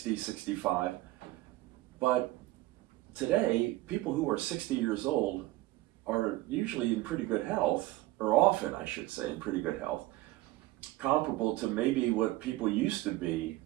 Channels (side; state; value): left; quieter; 17.8 dB